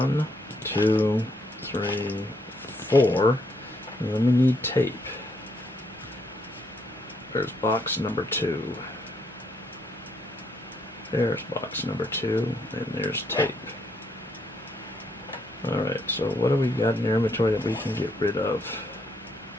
2, 3, 4. And then we need tape. There's box number 2. There's box number 2, and there's tape. Alright, so what do we got in our inventory that we can get rid of?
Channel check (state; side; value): normal; both; correlation 0.73